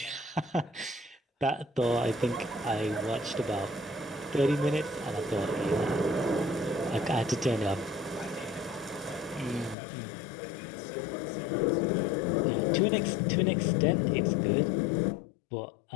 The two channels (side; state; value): right; drops out; at 9.8 s